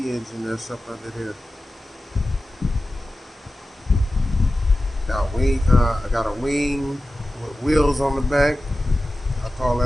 that's up under there. I got a wing with wheels on the back. I call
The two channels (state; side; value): normal; both; correlation 0.94